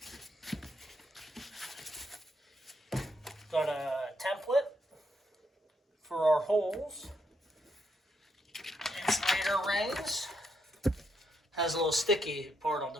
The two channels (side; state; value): both; normal; correlation 0.77